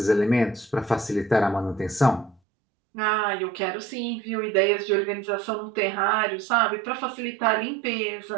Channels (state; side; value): drops out; left; at 2.4 s